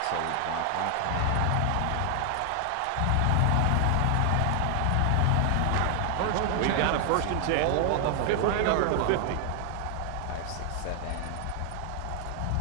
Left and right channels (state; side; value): different; both; correlation 0.00